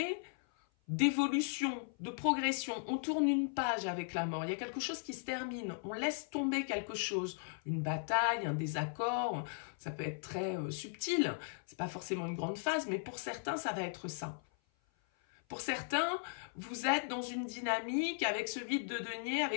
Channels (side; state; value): right; silent; 53 dB below the other